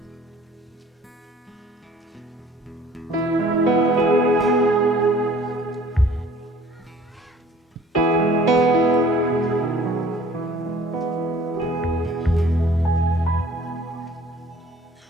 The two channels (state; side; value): normal; both; correlation 0.53